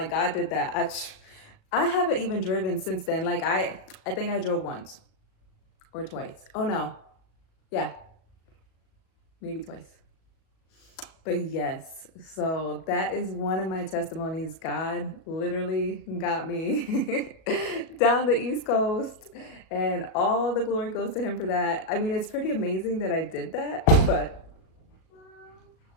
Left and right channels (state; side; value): late; right; 37 ms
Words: God did that. I haven't even driven since then. Like, I think I drove once or twice. Oh no. Yeah. Maybe twice. But yes, so that is one of my testimonies. God literally got me down the East Coast, and all the glory goes to him for that. I mean, it's pretty amazing that I did that, but